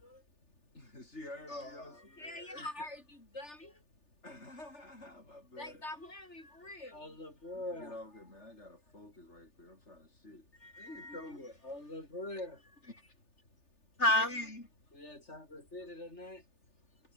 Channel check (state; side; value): late; right; 3.4 ms